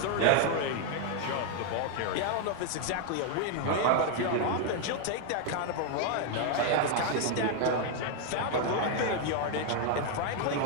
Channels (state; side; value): different; both; correlation 0.01